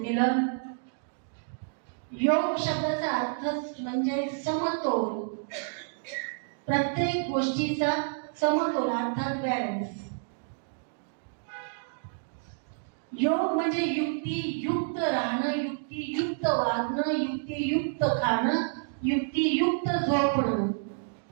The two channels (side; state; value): left; silent; digital silence